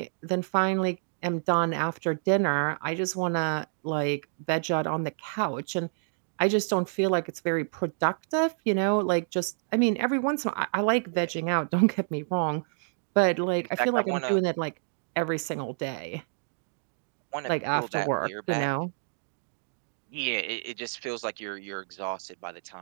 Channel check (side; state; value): left; silent; digital silence